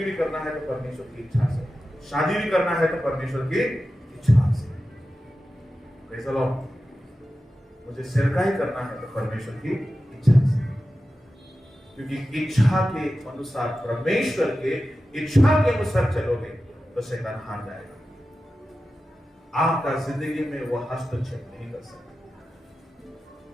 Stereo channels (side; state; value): both; normal; correlation 0.93